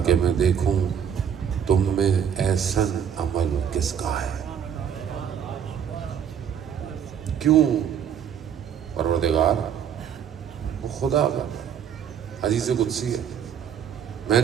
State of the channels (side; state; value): left; quieter; 8.3 dB